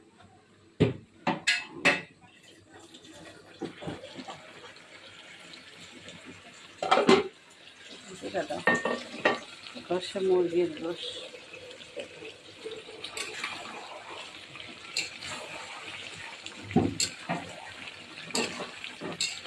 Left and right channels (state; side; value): identical; both; correlation 1.00